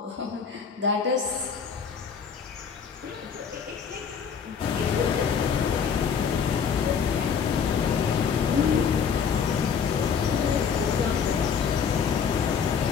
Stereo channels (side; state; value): right; quieter; 6.7 dB